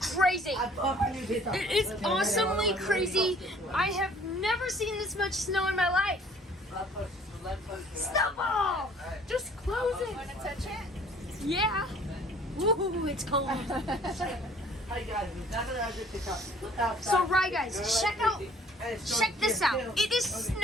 It is awesomely crazy. I have never seen this much snow in my life. Snowball! Just close it. Want to touch it? Yeah. Woo, it's cold. So right, guys, check this out. It is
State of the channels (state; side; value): normal; both; correlation 0.55